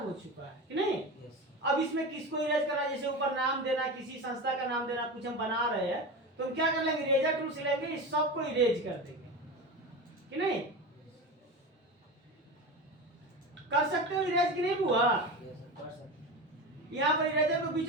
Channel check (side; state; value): both; normal; correlation 0.25